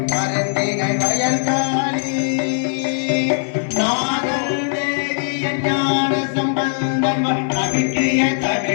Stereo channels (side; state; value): right; silent; 66 dB below the other